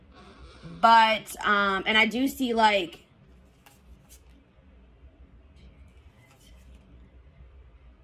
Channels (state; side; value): identical; both; correlation 1.00